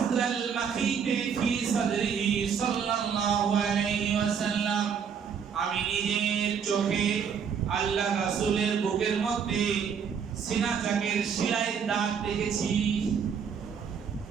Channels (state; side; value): quieter; left; 7.0 dB